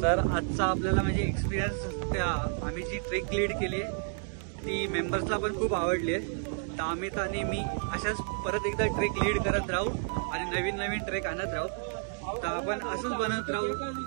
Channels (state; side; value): silent; left; 57 dB below the other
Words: आजचा आपल्याला म्हणजे experience त्या आम्ही जी trek lead केली आहे ती मेंबर्सला पण खूप आवडली आहे. तर अमित आणि मी अशाच परत एकदा ट्रेक लीड करत राहू आणि नवीन ट्रेक आणत राहू. तर आपण असंच बनत